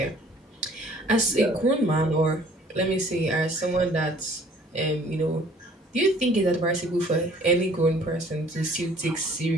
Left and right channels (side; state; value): both; normal; correlation 0.55